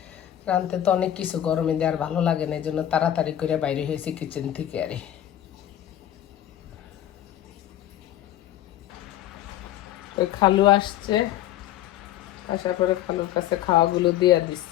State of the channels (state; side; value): quieter; right; 12.1 dB